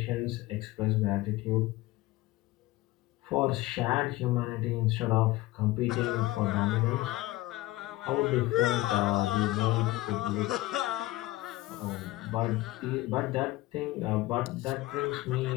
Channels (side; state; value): right; quieter; 18.3 dB